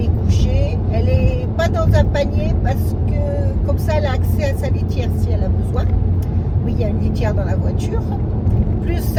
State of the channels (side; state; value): both; identical; correlation 1.00